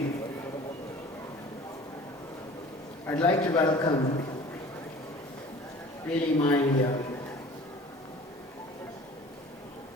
I'd like to welcome really my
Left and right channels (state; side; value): normal; both; correlation 0.45